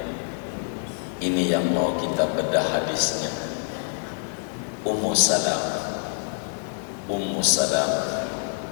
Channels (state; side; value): silent; right; digital silence